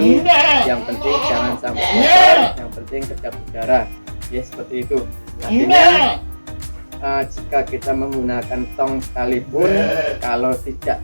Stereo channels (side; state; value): both; inverted; correlation -1.00